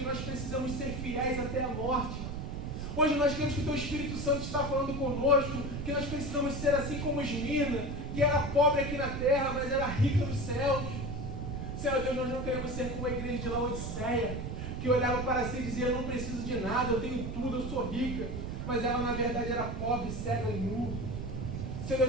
nós precisamos ser fiéis até a morte. Hoje nós queremos que o Teu Espírito Santo está falando conosco, que nós precisamos ser assim como Esmirna, que era pobre aqui na terra, mas era rica nos céus. Senhor Deus, nós não queremos ser como a igreja de Laodiceia, que olhava para si e dizia, eu não preciso de nada, eu tenho tudo, eu sou rica. Mas ela na verdade era pobre, cega e nu. Senhor Deus,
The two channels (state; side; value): noise; right; rumble, 5 dB below the sound